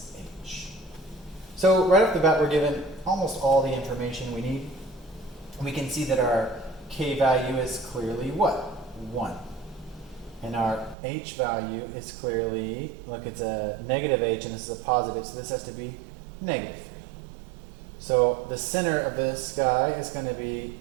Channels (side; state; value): left; drops out; at 11.0 s